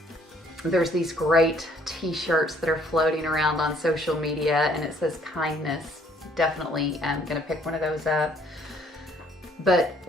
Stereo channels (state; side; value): normal; both; correlation 0.62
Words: There's these great t-shirts that are floating around on social media and it says kindness. Definitely gonna pick one of those up. But